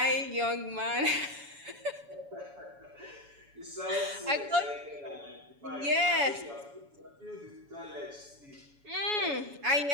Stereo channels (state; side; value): late; left; 7.1 ms